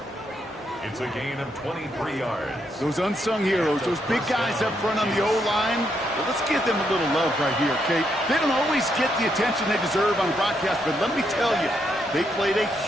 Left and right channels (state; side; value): normal; both; correlation 0.78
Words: It's a gain of 23 yards. Those unsung heroes, those big guys up front on the O-line, well, let's give them a little love right here, Kate. They don't always get the attention they deserve on broadcast, but let me tell you, they played a